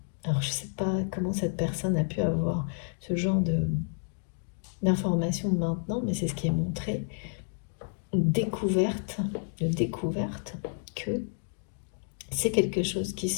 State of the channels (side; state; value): right; silent; 58 dB below the other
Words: alors je ne sais pas comment cette personne a pu avoir ce genre d'informations maintenant, mais c'est ce qui est montré, découverte que c'est quelque chose qui